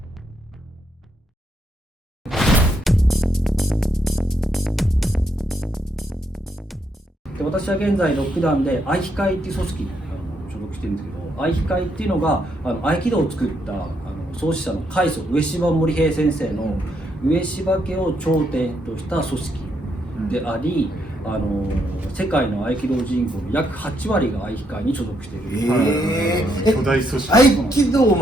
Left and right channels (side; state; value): both; normal; correlation 0.77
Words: 私は現在6段で愛機会っていう組織に所属してるんですけど、愛機会っていうのが合気道を作った創始者の開祖上芝森平先生の上芝家を頂点とした組織であり、世界の合気道人口の約8割が愛機会に所属している、巨大組織。合気道